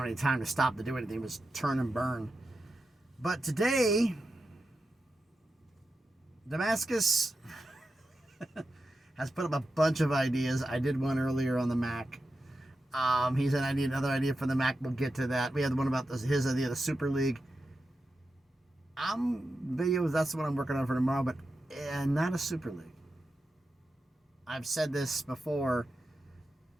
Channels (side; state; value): both; normal; correlation 0.89